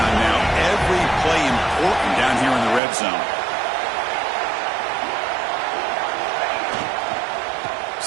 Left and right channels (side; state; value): left; drops out; at 2.8 s